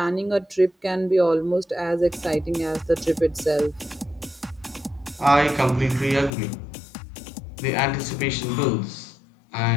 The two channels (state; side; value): drops out; right; at 6.3 s